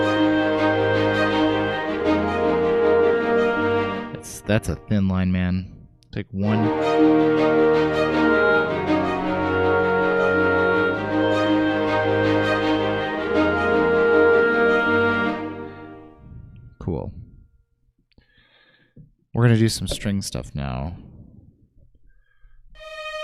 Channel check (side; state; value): both; identical; correlation 1.00